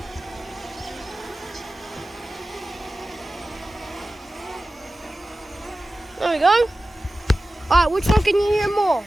There we go. Alright, which one can you hear more?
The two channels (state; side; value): normal; both; correlation 0.95